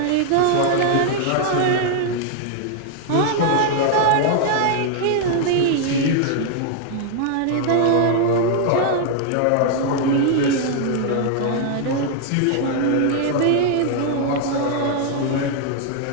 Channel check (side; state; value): both; different; correlation 0.00